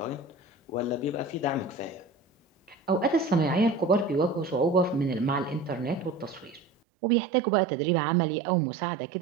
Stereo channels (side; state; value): left; drops out; at 6.7 s